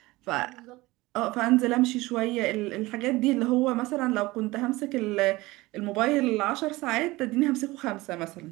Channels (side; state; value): left; quieter; 20.3 dB